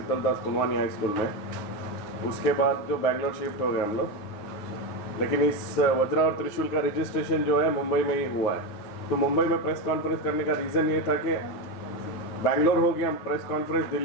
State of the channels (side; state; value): right; late; 9.6 ms